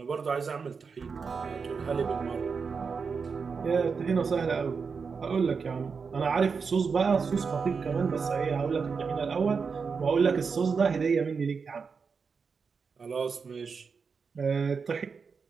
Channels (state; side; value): quieter; left; 5.4 dB